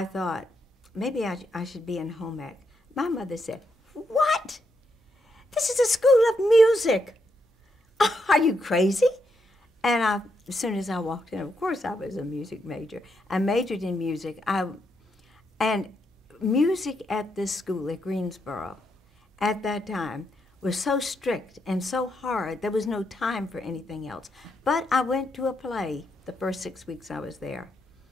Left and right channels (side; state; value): both; normal; correlation 0.80